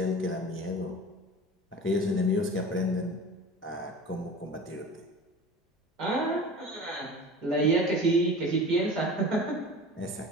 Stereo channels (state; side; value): normal; both; correlation 0.37